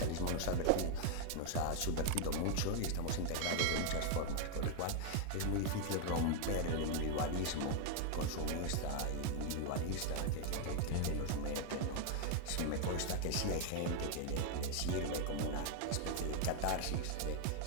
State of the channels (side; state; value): both; different; correlation 0.00